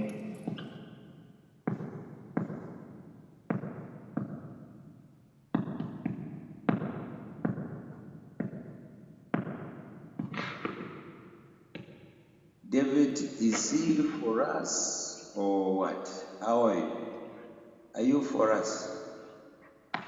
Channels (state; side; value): identical; both; correlation 1.00